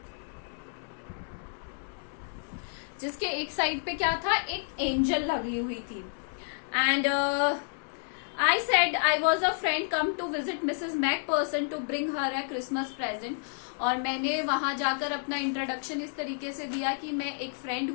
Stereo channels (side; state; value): right; silent; digital silence